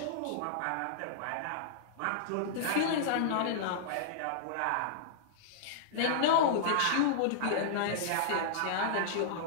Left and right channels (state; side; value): different; both; correlation -0.02